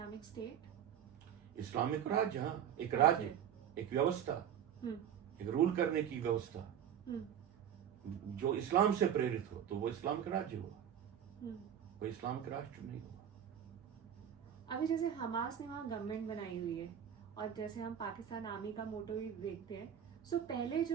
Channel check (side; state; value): left; quieter; 9.1 dB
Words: स्टेट, इस्लामिक राज्य, हाँ, एक राज्य, एक व्यवस्था, एक रूल करने की व्यवस्था जो इस्लाम से प्रेरित हो, तो वो इस्लामिक राज्य हुआ, वो इस्लामिक राष्ट्र नहीं हुआ। अभी जैसे हमास ने वहाँ गवर्नमेंट बनाई हुई है, और जैसे हम पाकिस्तान आर्मी का मोटो भी देखते हैं, सो पहले